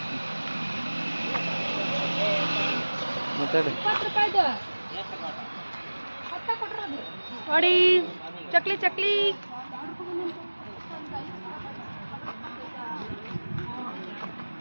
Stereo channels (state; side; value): inverted; both; correlation -1.00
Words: ಮಾತಾಡಿ. 20 ರೂಪಾಯಿದು ನೋಡಿ ಚಕ್ಲಿ ಚಕ್ಲಿ.